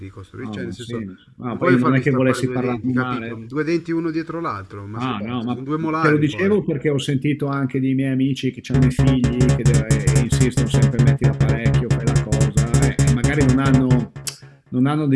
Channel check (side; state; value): both; identical; correlation 1.00